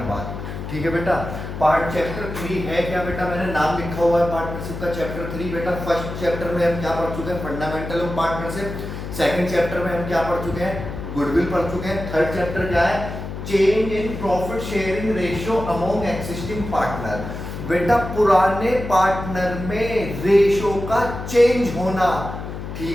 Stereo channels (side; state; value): left; noise; hum, 8 dB below the sound